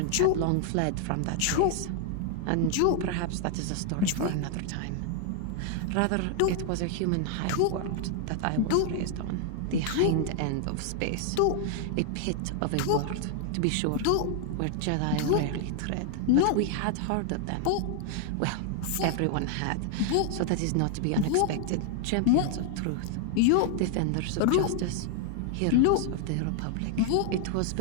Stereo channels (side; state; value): both; different; correlation 0.00